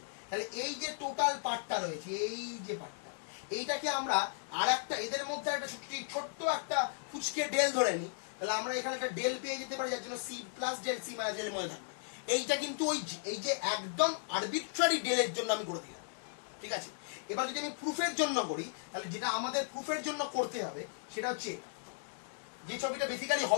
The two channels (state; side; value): silent; right; digital silence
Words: তাহলে এই যে টোটাল পার্টটা রয়েছে, এই যে পার্টটা, এইটাকে আমরা আর একটা এদের মধ্যে একটা ছোট্ট একটা ফুচকে ডেল ধরে নিই, তাহলে আমরা এখানে একটা ডেল পেয়ে যেতে পারি, যার জন্য C plus del C minus del মধ্যে থাকবে। এইটা কিন্তু এই যে একদম আরবিট্রারি ডেলের জন্য আমি করে দিলাম, ঠিক আছে। এবার যদি আমি প্রুফের জন্য করি, তাহলে যেটা আমাদের প্রুফের জন্য করতে হবে সেটা হচ্ছে যে ছবিটা বেসিক্যালি